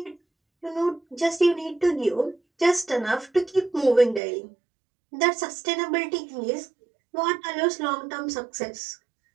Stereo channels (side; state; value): left; drops out; at 4.2 s